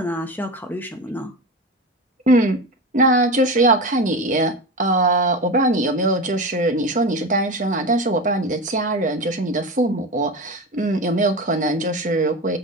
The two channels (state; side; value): normal; both; correlation 0.24